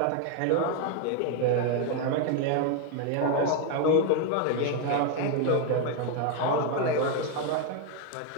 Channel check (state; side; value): different; both; correlation 0.01